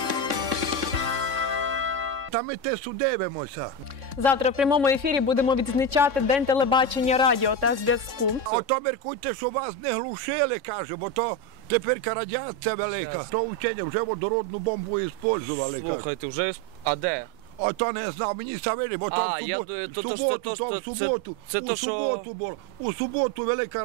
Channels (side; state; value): left; late; 3.6 ms